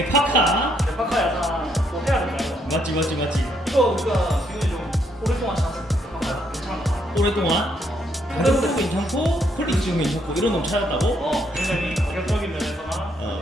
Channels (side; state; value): both; normal; correlation 0.73